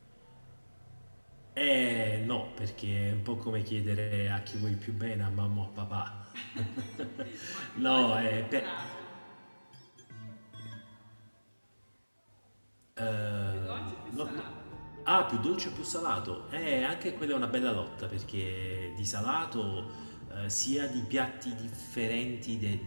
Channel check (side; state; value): both; inverted; correlation -1.00